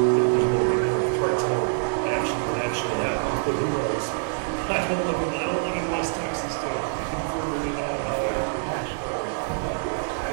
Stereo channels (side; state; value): left; silent; digital silence